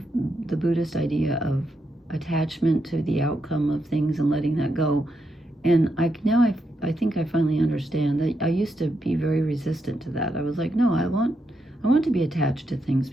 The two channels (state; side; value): normal; both; correlation 0.82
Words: the Buddhist idea of attachment to the outcome of things and letting that go. And I think I finally understand that I used to be very resistant to that. I was like, no, I want to be attached to things